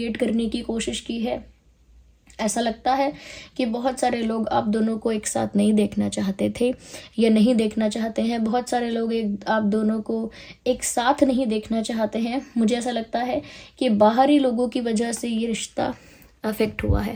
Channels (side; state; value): both; identical; correlation 1.00